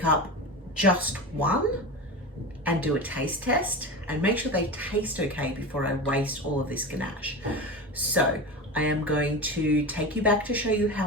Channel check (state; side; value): normal; both; correlation 0.26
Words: up just one and do a taste test, and make sure they taste okay before I waste all of this ganache. So I am going to take you back to show you